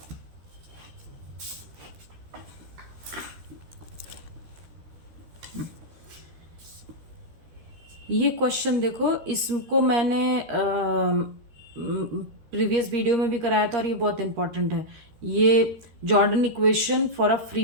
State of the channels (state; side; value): late; left; 13 ms